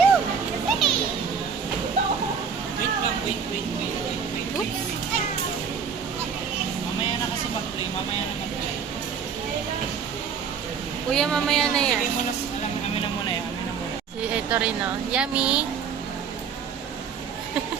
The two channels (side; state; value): left; quieter; 6.5 dB